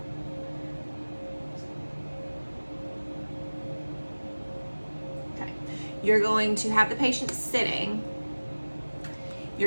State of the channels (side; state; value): both; inverted; correlation -1.00